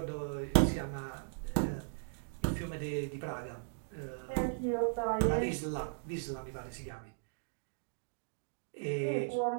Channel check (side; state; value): left; silent; digital silence